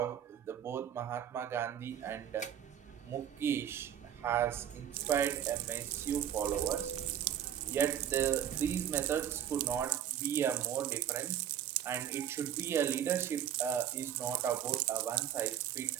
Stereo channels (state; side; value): quieter; left; 10.1 dB